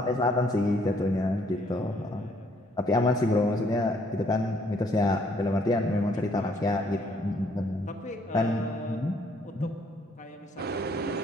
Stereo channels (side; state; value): both; normal; correlation 0.66